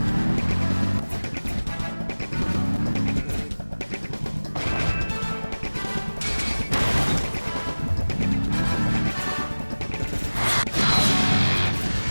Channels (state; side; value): inverted; both; correlation -1.00